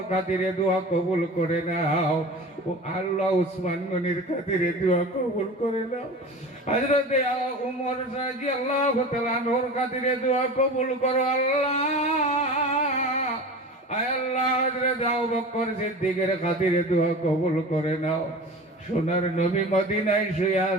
খাতিরে দোয়া কবুল করে নাও। ও আল্লাহ, উসমান গনির খাতিরে দোয়া কবুল করে নাও। হযরত উমর রাদিয়াল্লাহু তাআলা আনহুর খাতিরে দোয়া কবুল করো আল্লাহ। আয় আল্লাহ, হযরত আবু বকর সিদ্দিকের খাতিরে দোয়া কবুল করে নাও। সোনার নবী মদিনায় শুয়ে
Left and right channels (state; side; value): normal; both; correlation 0.35